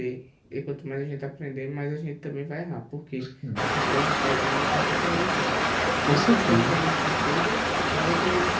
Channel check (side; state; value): both; identical; correlation 1.00